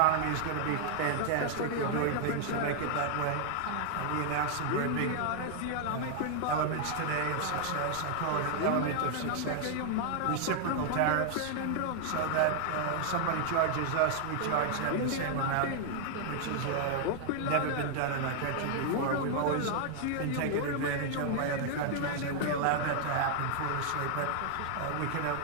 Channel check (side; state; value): both; different; correlation 0.00